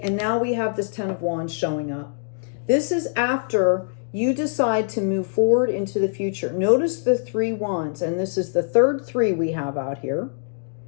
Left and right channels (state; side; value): silent; right; digital silence